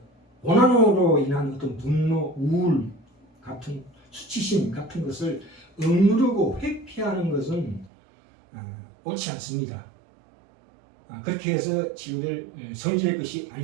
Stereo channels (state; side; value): drops out; left; at 7.9 s